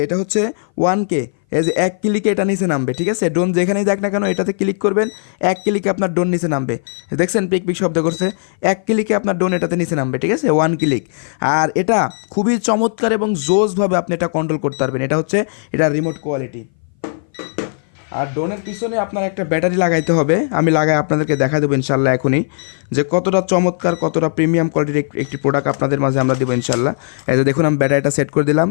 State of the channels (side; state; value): right; silent; 59 dB below the other